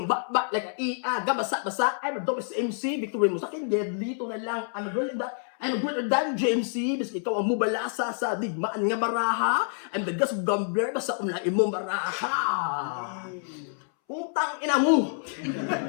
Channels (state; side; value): silent; right; 60 dB below the other